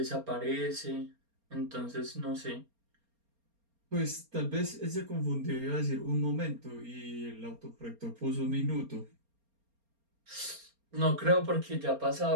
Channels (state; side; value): late; left; 4.3 ms